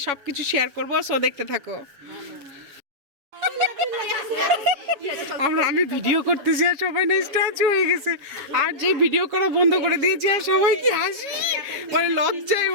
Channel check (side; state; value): left; late; 7.2 ms